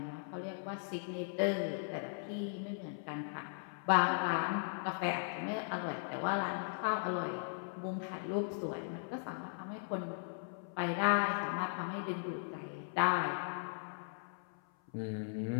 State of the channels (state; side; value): silent; right; 52 dB below the other